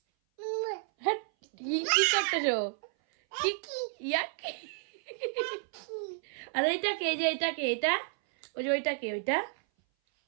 হ্যাঁ কি করতেছো? আর এইটা কে, যে এটা কে, এটা ওই যে ওইটা কে,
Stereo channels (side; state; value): left; silent; 57 dB below the other